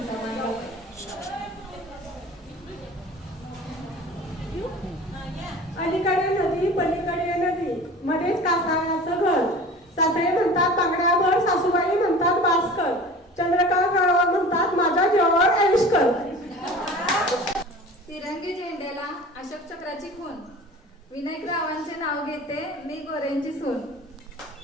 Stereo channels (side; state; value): both; normal; correlation 0.40